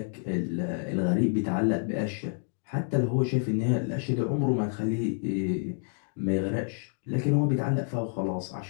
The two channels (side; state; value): right; silent; 59 dB below the other